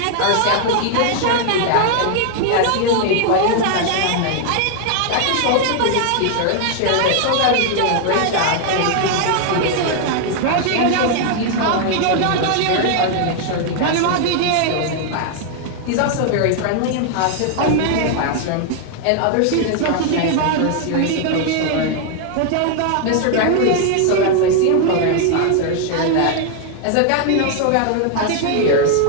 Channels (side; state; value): both; different; correlation 0.00